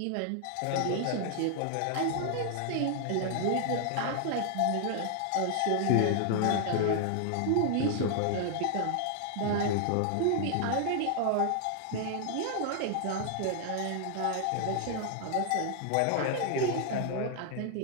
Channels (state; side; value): different; both; correlation 0.00